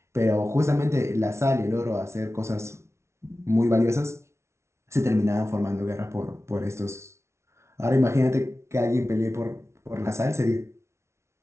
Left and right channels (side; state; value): left; late; 0.13 ms